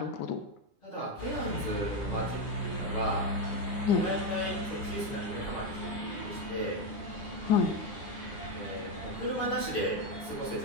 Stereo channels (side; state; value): right; late; 9.8 ms